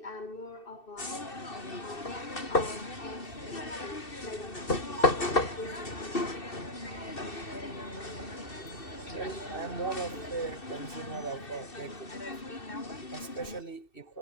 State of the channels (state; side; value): late; right; 2.6 ms